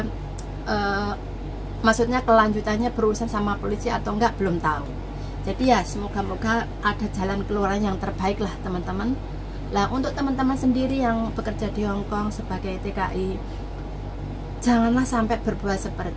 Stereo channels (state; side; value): identical; both; correlation 1.00